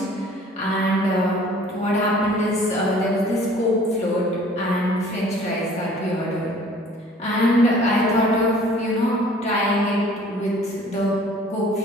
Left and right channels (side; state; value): both; normal; correlation 0.52